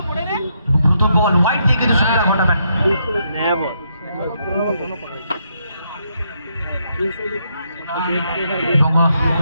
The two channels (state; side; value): inverted; both; correlation -0.77